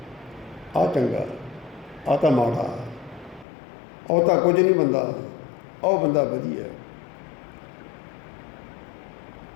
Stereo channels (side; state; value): right; drops out; at 3.5 s